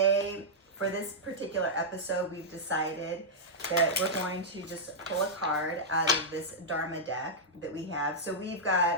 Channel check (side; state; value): both; normal; correlation -0.08